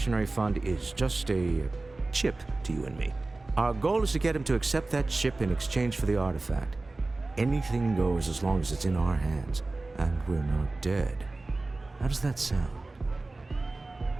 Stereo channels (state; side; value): quieter; left; 3.2 dB